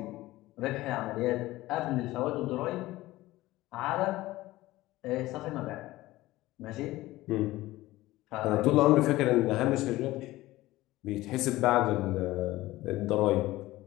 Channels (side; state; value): right; quieter; 17.6 dB